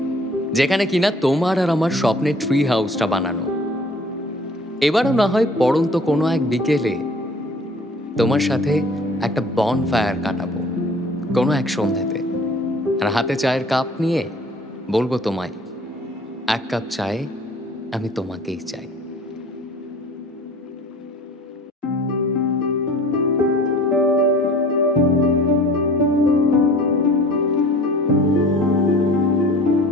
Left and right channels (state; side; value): normal; both; correlation 0.49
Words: যেখানে কিনা তোমার আর আমার স্বপ্নের ট্রি হাউসটা বানানো। এবারও না হয় পড়ন্ত কোনো এক বিকেলে তোমার সাথে একটা বন ফায়ার কাটাবো কোনো এক সন্ধ্যাতে, আর হাতে চায়ের কাপ নিয়ে বলবো তোমায়, এক কাপ চায়ে আমি তোমাকেই চাই।